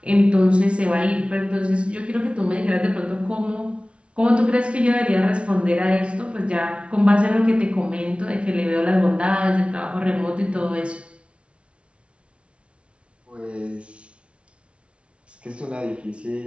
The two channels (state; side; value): late; left; 0.060 ms